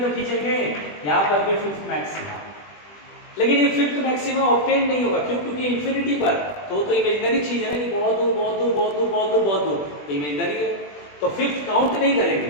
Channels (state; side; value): late; right; 20 ms